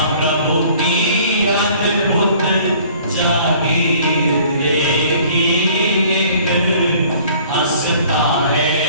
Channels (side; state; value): both; inverted; correlation -0.53